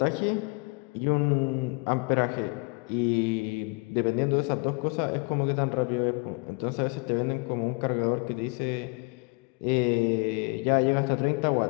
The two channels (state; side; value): quieter; right; 30.9 dB